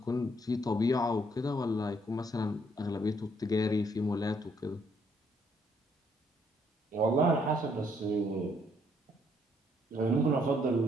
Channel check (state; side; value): normal; both; correlation 0.69